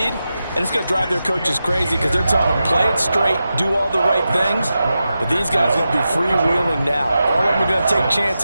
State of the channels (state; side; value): inverted; both; correlation -0.91